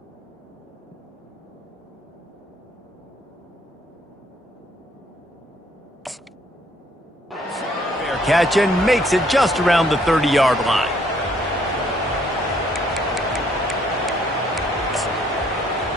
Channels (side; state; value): both; normal; correlation 0.66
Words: Catch and makes it just around the 30-yard line.